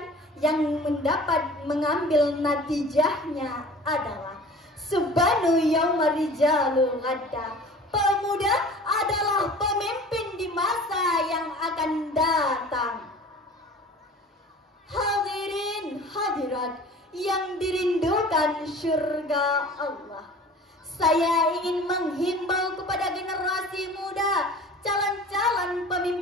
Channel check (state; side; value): normal; both; correlation 0.43